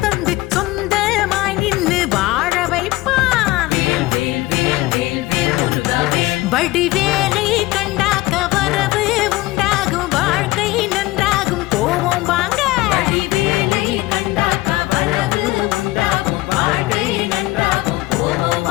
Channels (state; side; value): quieter; right; 19.0 dB